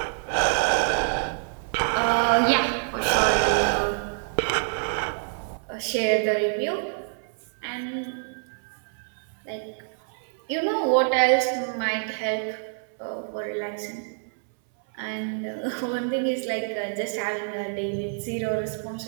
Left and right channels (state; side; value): silent; left; 61 dB below the other